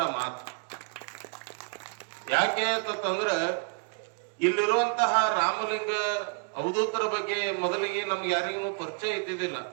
ಮಾತು. ಯಾಕೆ ಅಂತಂದ್ರ ಇಲ್ಲಿರುವಂತಹ ರಾಮಲಿಂಗ ಅವಧೂತರ ಬಗ್ಗೆ ಮೊದಲಿಗೆ ನಮ್ಗೆ ಯಾರಿಗೂ ಪರಿಚಯ ಇದ್ದಿದ್ದಿಲ್ಲ.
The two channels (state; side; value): quieter; left; 39.9 dB